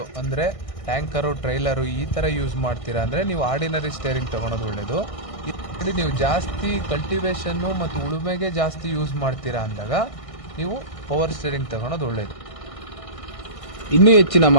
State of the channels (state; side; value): late; right; 1.6 ms